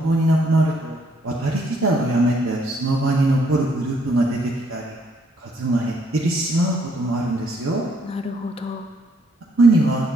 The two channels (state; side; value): normal; both; correlation 0.69